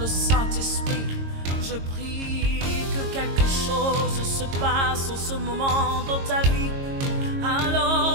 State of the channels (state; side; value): late; left; 22 ms